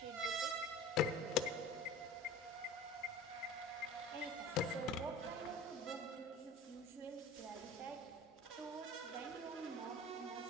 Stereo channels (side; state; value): both; normal; correlation 0.39